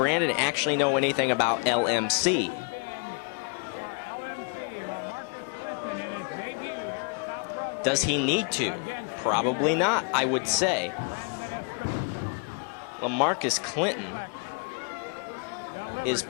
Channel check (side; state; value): right; quieter; 37.3 dB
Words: actually know anything about LMC? Does he need to? Probably not, I would say. LaMarcus Clinton is